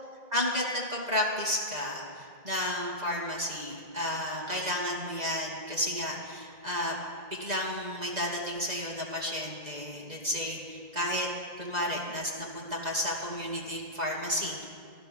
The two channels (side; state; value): left; late; 2.0 ms